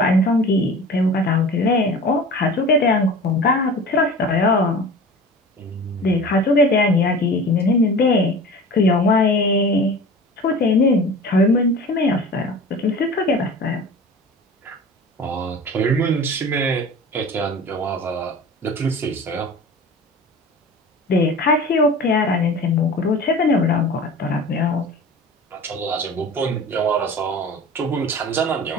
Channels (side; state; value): both; normal; correlation 0.38